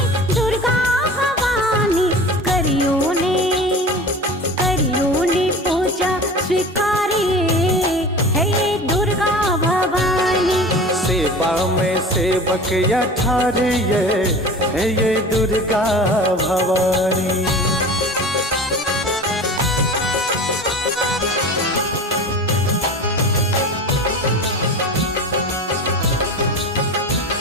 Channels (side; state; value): both; normal; correlation 0.36